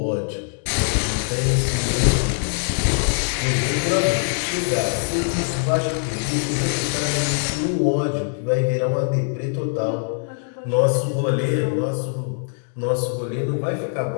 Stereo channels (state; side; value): silent; right; 64 dB below the other